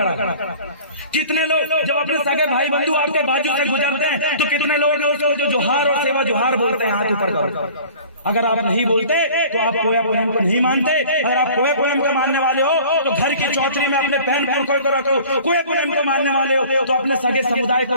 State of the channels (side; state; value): both; inverted; correlation -0.46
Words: कितने लोग जब अपने सगे भाई बंधु आपके बाजू से गुजरते हैं तो कितने लोग जो जोहार और सेवा जोहार बोलते हैं हाथ ऊपर करो? अगर आप नहीं बोलते तो आप कोया पोएम को नहीं मानते। अगर आप कोया पोएम के मानने वाले हो तो घर की चौधरी में अपने पैन पुरखों को रखो। कोया पोएम को मानने वाले हो तो अपने सगे समुदाय को